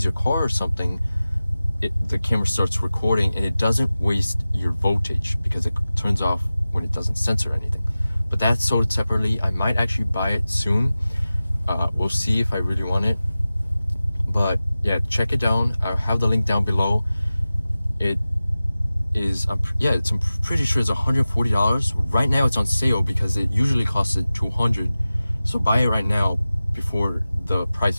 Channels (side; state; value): both; inverted; correlation -0.96